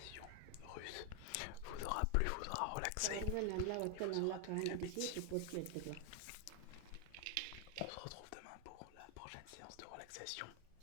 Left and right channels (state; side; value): different; both; correlation 0.00